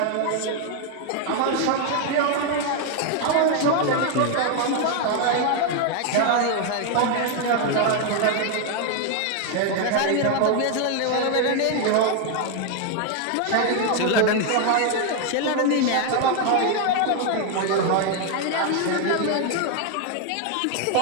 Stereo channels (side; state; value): both; different; correlation 0.01